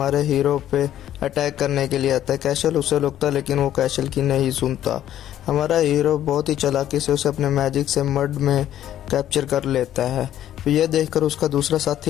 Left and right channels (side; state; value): right; quieter; 11.7 dB